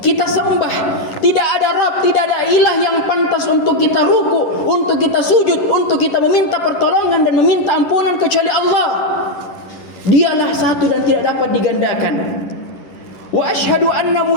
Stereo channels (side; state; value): right; late; 11 ms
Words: sembah. Tidak ada Rabb, tidak ada ilah yang pantas untuk kita ruku, untuk kita sujud, untuk kita meminta pertolongan dan meminta ampunan kecuali Allah. Dialah satu dan tidak dapat digandakan. Wa asyhadu anna